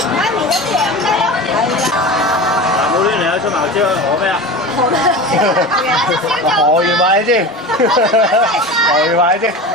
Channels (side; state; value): both; normal; correlation 0.30